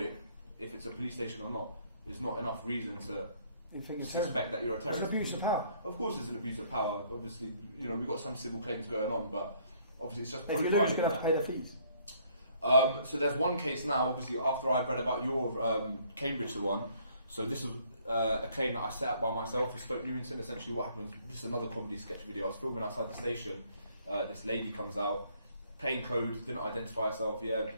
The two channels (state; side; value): inverted; both; correlation -0.63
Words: if it's a police station or not, is not enough reason to suspect that you're a terrorist. It's abuse of power. Of course, it's an abuse of power. Obviously, we've got some civil claims going on, but obviously it's just if you lose, you're going to have to pay the fees. So there's one case now, obviously, after I read about your Cambridge one. So this was a claim that I set up by myself for Stoke Newington. Essentially what happened was, this is another comedy sketch video. I was filming outside the station. This lady comes out, plain clothes, didn't identify herself,